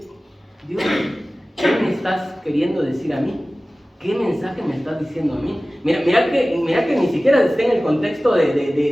Dios, ¿qué me estás queriendo decir a mí? ¿qué mensaje me estás diciendo a mí? Mira que ni siquiera está en el contexto de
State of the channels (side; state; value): both; normal; correlation 0.97